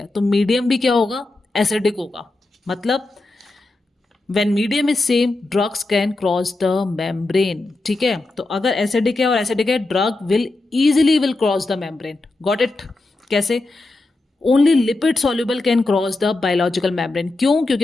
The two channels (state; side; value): quieter; right; 3.0 dB